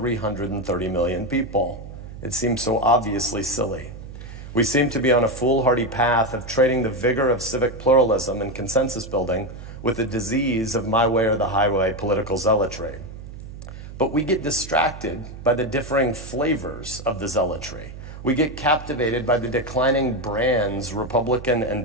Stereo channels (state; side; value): noise; right; hum, 13 dB below the sound